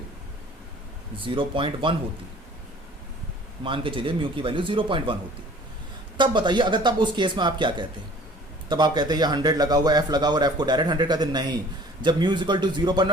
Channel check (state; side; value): normal; both; correlation 0.50